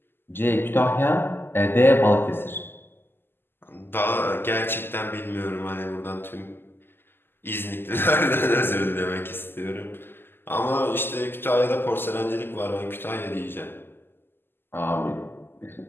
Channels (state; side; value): late; right; 0.10 ms